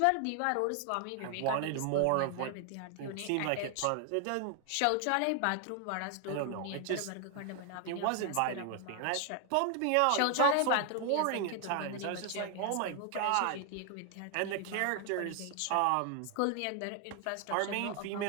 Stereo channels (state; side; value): different; both; correlation 0.00